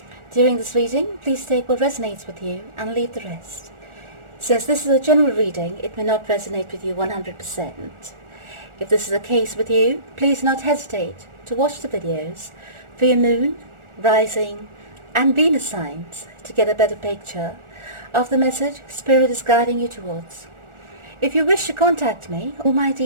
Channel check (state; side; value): late; left; 1.4 ms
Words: During this reading, please take what resonates with you and leave the rest. Since this is a general reading, it may not resonate with you 100%. If this is the case with you, please do not hesitate to watch the videos for your moon, rising and Venus signs to get a better picture of the message Spirit is guiding you towards. If you wish to contact me, all my